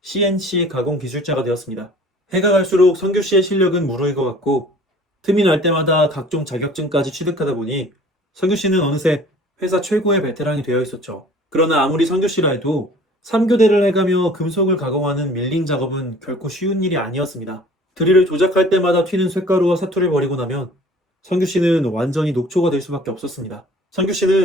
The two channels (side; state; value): both; normal; correlation 0.49